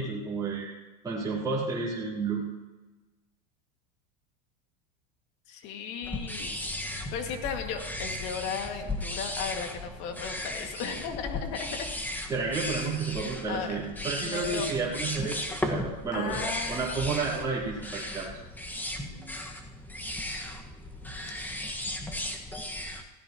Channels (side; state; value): both; normal; correlation 0.20